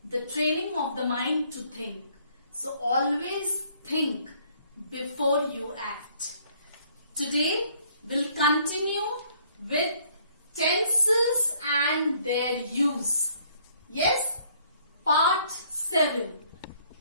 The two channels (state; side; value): inverted; both; correlation -0.63